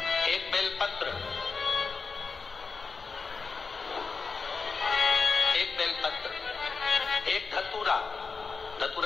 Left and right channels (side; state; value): right; quieter; 4.7 dB